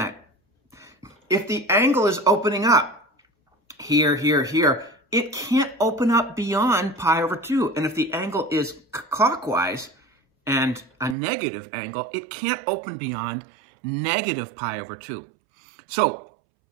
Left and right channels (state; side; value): drops out; left; at 11.2 s